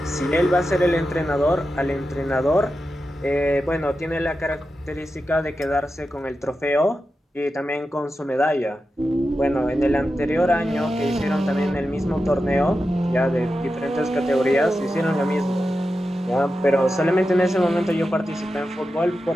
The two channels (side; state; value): both; normal; correlation 0.90